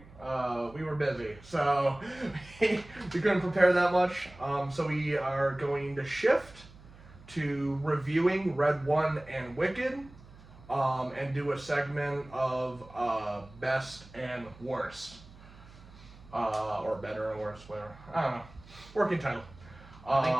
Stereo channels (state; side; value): noise; right; hum, 21 dB below the sound